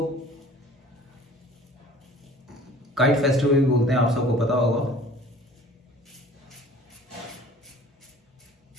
काइट फेस्टिवल भी बोलते हैं, आप सबको पता होगा।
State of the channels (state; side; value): normal; both; correlation 0.48